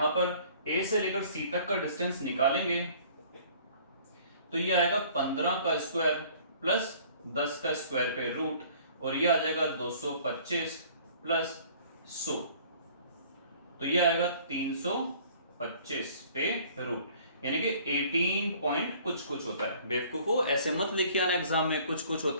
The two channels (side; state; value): both; inverted; correlation -0.53